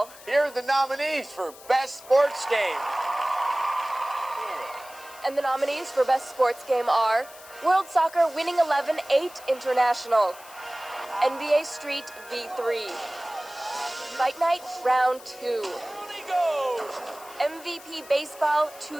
Here are the nominees for Best Sports Game. And the nominees for Best Sports Game are World Soccer Winning 11 8 International, NBA Street V3, Fight Night Round 2, MVP Baseball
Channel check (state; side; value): noise; left; hiss, 19 dB below the sound